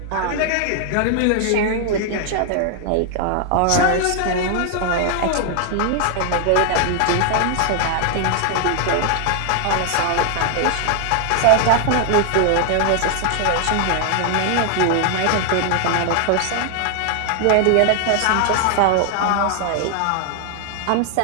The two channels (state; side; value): different; both; correlation 0.00